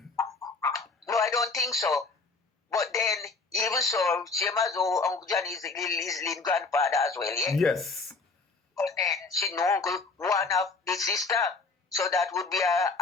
No, I don't think so. But then even so, same as Uncle Johnny is Lynn's grandfather as well, yeah. Yes. But then she know one of the sister. So that would be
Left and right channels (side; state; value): right; quieter; 4.0 dB